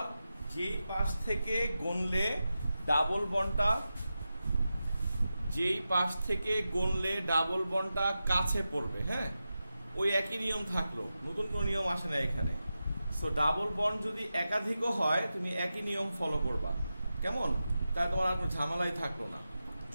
যেই পাশ থেকে গুনলে ডাবল বন্ডটা কাছে পড়বে, হ্যাঁ, ওই একই নিয়ম থাকলো, নতুন কোনো নিয়ম আসে না এখানে। সো ডাবল বন্ড যদি একাধিকও হয় তুমি একই নিয়ম ফলো করবা, কেমন? তাই তোমার আর কোনো ঝামেলাই থাকলো না।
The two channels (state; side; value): inverted; both; correlation -0.92